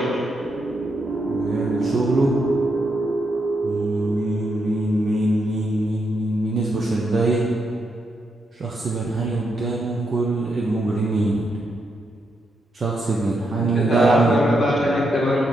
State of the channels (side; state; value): both; normal; correlation 0.81